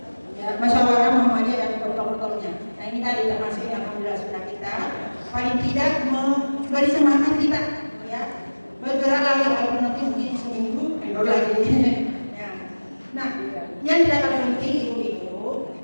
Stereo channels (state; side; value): inverted; both; correlation -1.00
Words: ya, musyawarah Muhammadiyah dan protokol-protokolnya. Nah ini tadi termasuk yang alhamdulillah sudah kita paling tidak memberi semangat kita, ya, bergerak lagi walaupun nanti mungkin seminggu kendor lagi. Ya. Nah yang tidak kalah penting itu